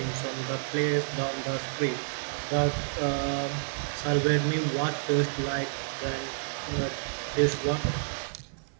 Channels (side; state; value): left; silent; 58 dB below the other